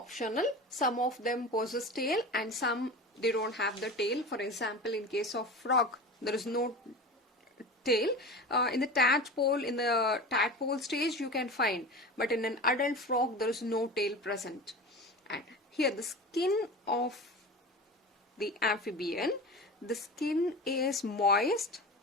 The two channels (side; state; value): both; normal; correlation 0.31